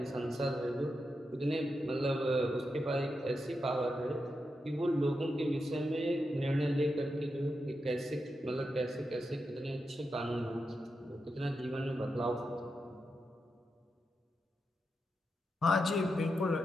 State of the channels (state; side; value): normal; both; correlation 0.87